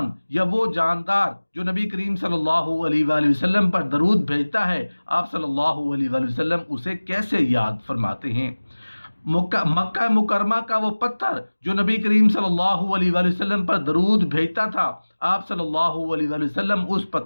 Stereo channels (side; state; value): both; inverted; correlation -1.00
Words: یا وہ جاندار جو نبی کریم صلی اللہ علیہ وآلہ وسلم پر درود بھیجتا ہے، آپ صلی اللہ علیہ وآلہ وسلم اسے کیسے یاد فرماتے ہیں؟ مکہ مکرمہ کا وہ پتھر جو نبی کریم صلی اللہ علیہ وآلہ وسلم پر درود بھیجتا تھا، آپ صلی اللہ علیہ وآلہ وسلم اس